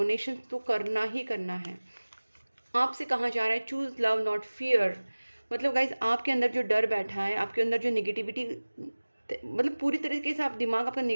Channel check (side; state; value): both; inverted; correlation -1.00